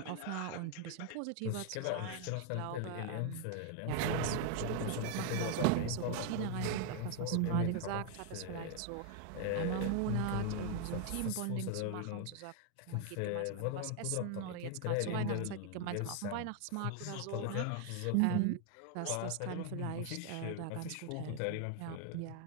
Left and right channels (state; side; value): different; both; correlation 0.00